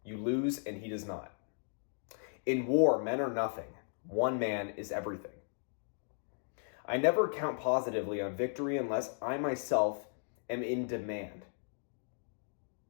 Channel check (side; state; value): right; silent; digital silence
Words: You lose and he does not. In war, men are nothing. One man is everything. I never count positively on victory unless I myself am in demand.